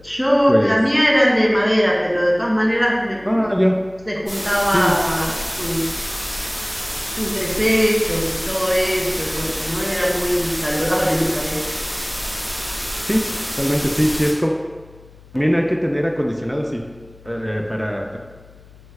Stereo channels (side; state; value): left; noise; hum, 24 dB below the sound